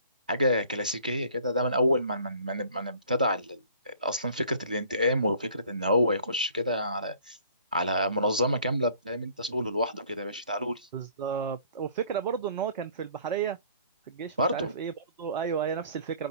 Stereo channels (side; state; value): both; inverted; correlation -0.55